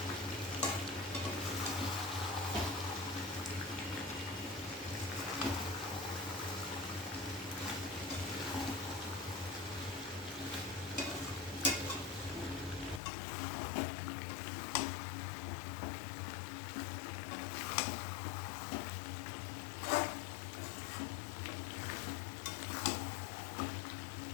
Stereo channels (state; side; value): drops out; right; at 13.0 s